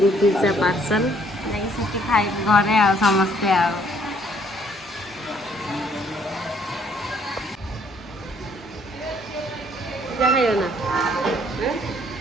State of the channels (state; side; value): normal; both; correlation 0.64